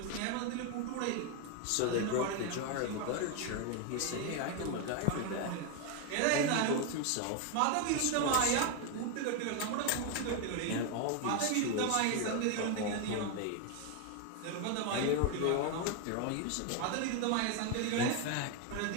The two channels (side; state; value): both; different; correlation 0.01